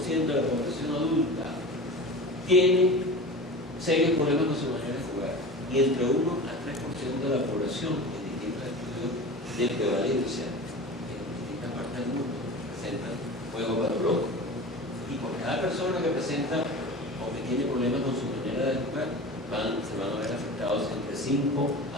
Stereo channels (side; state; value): both; normal; correlation 0.33